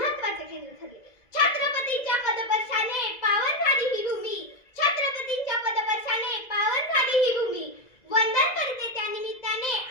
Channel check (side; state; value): right; late; 2.0 ms